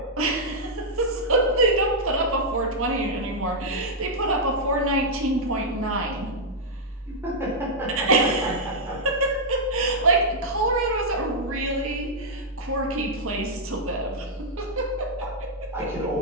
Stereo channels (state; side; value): normal; both; correlation -0.05